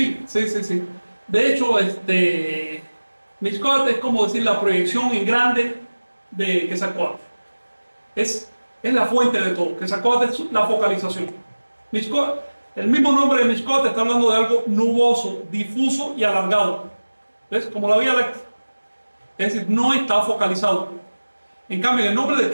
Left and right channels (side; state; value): both; inverted; correlation -1.00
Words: De hecho, Mixcoatl es como decir la proyección en grande de Quetzalcóatl. Es la fuente de todo. Quetzalcóatl es la focalización. Mixcoatl, el mismo nombre de Mixcoatl está hablando de algo nuboso, difuso y alargado. ¿Ves? Como la Vía Láctea. Es decir, no está focalizado. En cambio, el nombre de